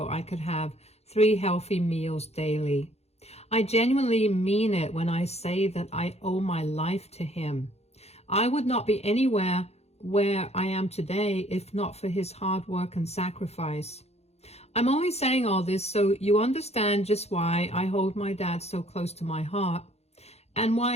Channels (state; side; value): late; right; 0.31 ms